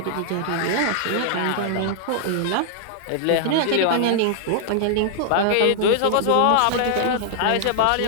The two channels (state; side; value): different; both; correlation -0.01